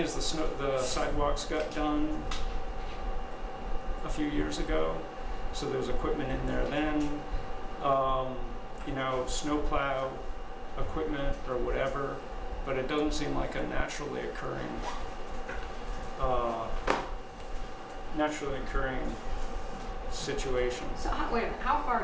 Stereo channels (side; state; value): both; identical; correlation 1.00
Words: the sidewalks got done a few years ago, so there was equipment in there then. Snowplow equipment or whatever, but it doesn't seem like a naturally occurring situation. So wait a minute, how